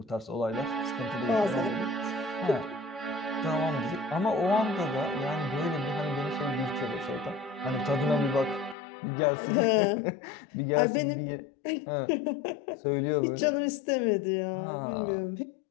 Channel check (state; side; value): drops out; right; at 8.8 s